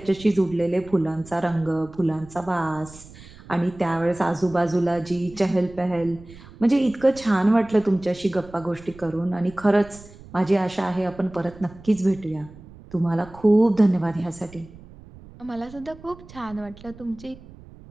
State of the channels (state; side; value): noise; right; rumble, 20 dB below the sound